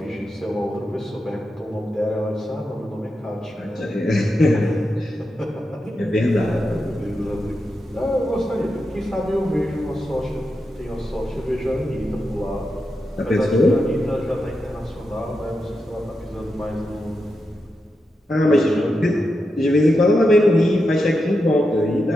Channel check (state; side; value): normal; both; correlation 0.87